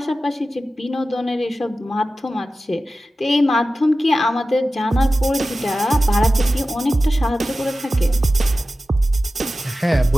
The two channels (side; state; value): both; normal; correlation 0.94